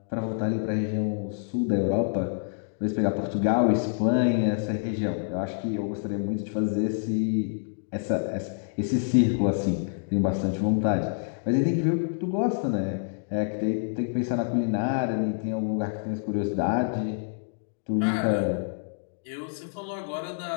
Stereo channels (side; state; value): right; silent; digital silence